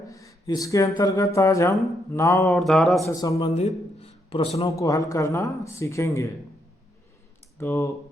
इसके अंतर्गत आज हम नाव और धारा से संबंधित प्रश्नों को हल करना सीखेंगे। तो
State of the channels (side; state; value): both; normal; correlation 0.77